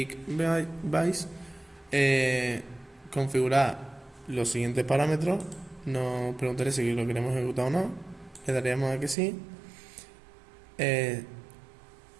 Vice, configurar los siguientes parámetros. Nos preguntaré si lo queremos ejecutar o no. Le daríamos a que sí.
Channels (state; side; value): drops out; left; at 9.2 s